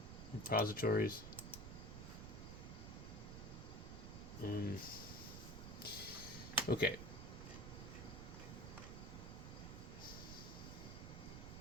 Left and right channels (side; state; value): right; noise; rumble, 8 dB below the sound